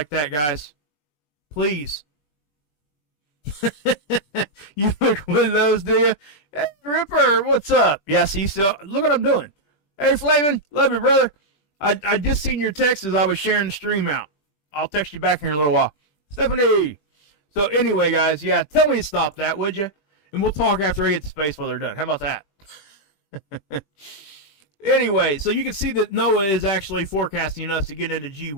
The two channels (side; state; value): right; late; 21 ms